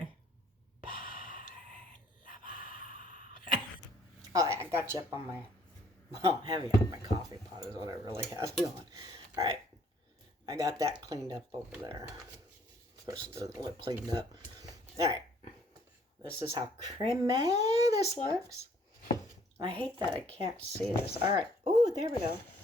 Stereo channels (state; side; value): normal; both; correlation 0.62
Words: Oh, I got you up on my, well, heavy on my coffee pot is what I really have you on. All right. I got that cleaned up over there. Of course, it doesn't look cleaned up. All right. This is how creamy this looks. I hate that I can't see this. All right. Oh, there we go.